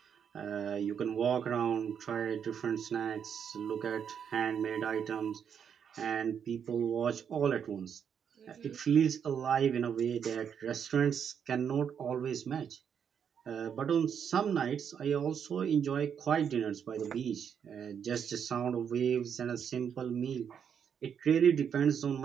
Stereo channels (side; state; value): left; quieter; 7.7 dB